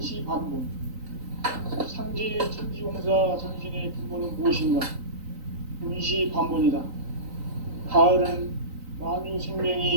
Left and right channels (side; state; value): left; late; 3.9 ms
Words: 상제의 천지공사 정신의 근본은 무엇인가? 운시반본이다. 가을은 만유